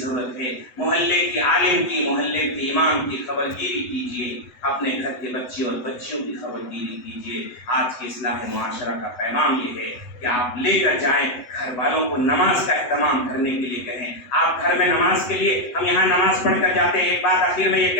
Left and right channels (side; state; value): right; late; 8.0 ms